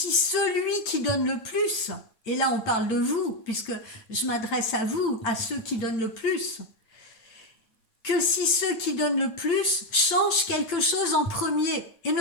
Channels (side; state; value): right; late; 8.9 ms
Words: celui qui donne le plus, et là on parle de vous, puisque je m'adresse à vous, à ceux qui donnent le plus, que si ceux qui donnent le plus changent quelque chose en premier et